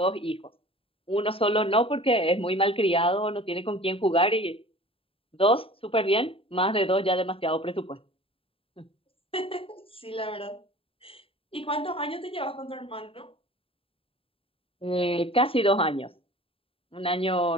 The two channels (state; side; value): late; right; 0.27 ms